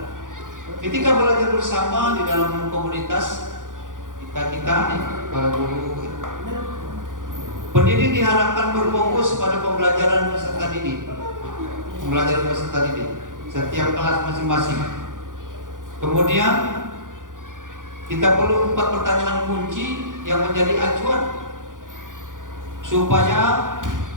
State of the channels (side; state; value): left; late; 0.88 ms